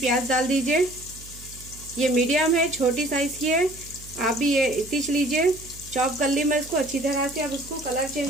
डाल दीजिए। ये मीडियम है, छोटी साइज की है। आप भी ये इतनी लीजिए। चॉप कर ली मैं इसको अच्छी तरह से। अब उसको कलर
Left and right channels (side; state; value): right; noise; hum, 18 dB below the sound